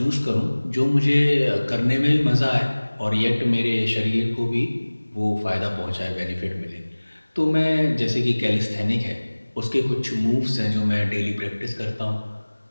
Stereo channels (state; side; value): inverted; both; correlation -1.00